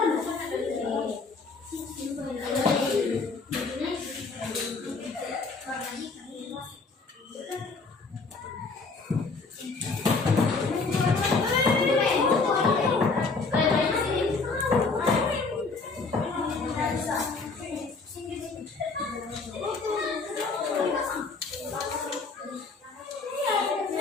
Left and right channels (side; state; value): right; quieter; 4.1 dB